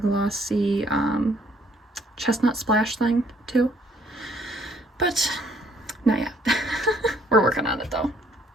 chestnut splash thing too, but not yet. We're working on it though.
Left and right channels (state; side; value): normal; both; correlation 0.64